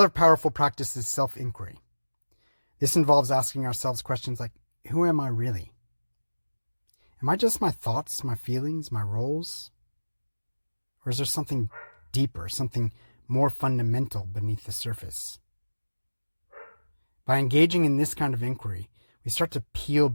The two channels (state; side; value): inverted; both; correlation -1.00